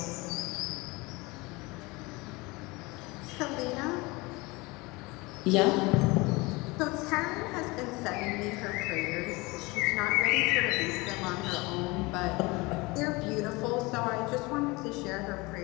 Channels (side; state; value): right; quieter; 24.2 dB